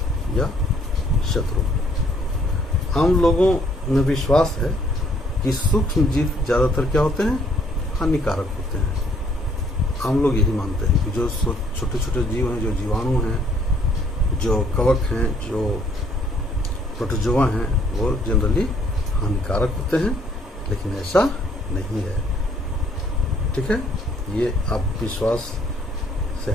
या शत्रु? आम लोगों में विश्वास है कि सूक्ष्म जीव ज़्यादातर क्या होते हैं? हानिकारक होते हैं। आम लोग यही मानते हैं कि जो छोटे छोटे जीव हैं, जो जीवाणु हैं, जो कवक हैं, जो प्रोटोजोआ हैं, वो जनरली हानिकारक होते हैं, लेकिन ऐसा नहीं है। ठीक है। ये आप विश्वास से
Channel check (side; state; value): both; normal; correlation 0.64